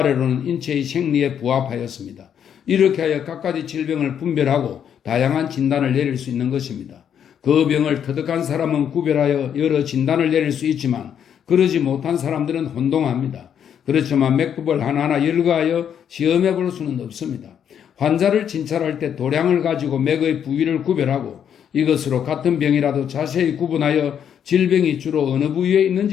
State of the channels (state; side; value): quieter; right; 8.7 dB